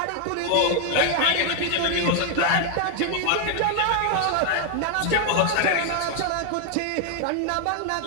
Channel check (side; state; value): both; different; correlation 0.00